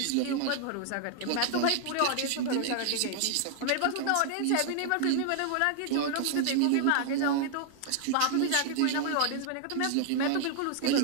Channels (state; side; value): different; both; correlation 0.00